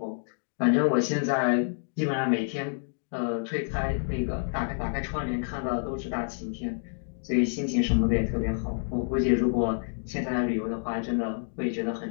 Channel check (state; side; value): silent; right; digital silence